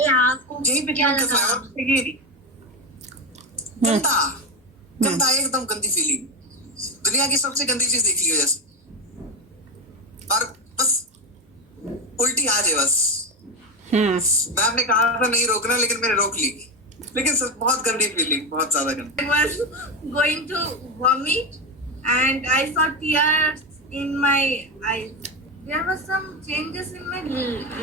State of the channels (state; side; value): normal; both; correlation 0.14